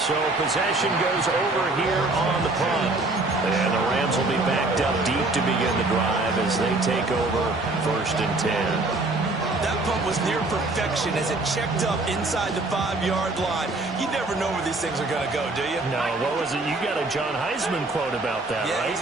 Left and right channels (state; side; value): quieter; left; 3.1 dB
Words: possession goes over here on the punt. And the Rams will be backed up deep to begin the drive as they take over first and 10. That punt was near perfection as it checked up inside the 5-yard line. You never know where these things are going to go, do you? No, what was it? You got a John Heisman quote about that, yeah, right?